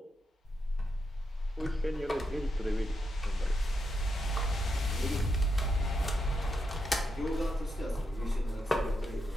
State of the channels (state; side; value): normal; both; correlation 0.84